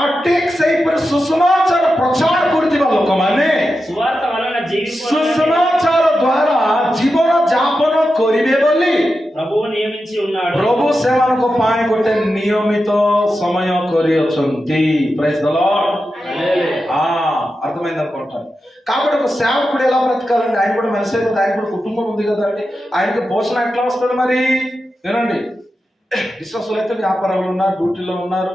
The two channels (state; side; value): normal; both; correlation 0.90